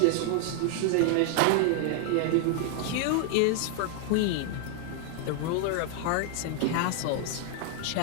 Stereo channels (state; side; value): different; both; correlation 0.00